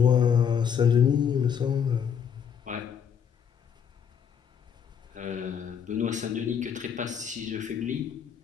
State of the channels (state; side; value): quieter; right; 7.7 dB